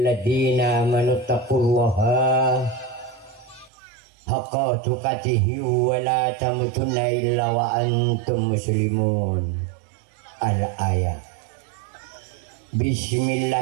amanu taqullaha haqqa tuqatih wa la tamutunna illa wa antum muslimun. Al-ayat.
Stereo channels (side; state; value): left; drops out; at 3.7 s